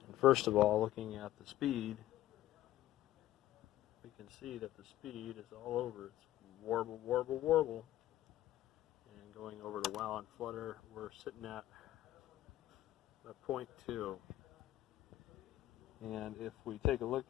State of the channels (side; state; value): right; quieter; 14.3 dB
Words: And first of all, looking at the speed, we can see that the speed is all over. It's warble, warble, warble. And going over to wow and flutter, we're sitting at a 0.2. And if we take a look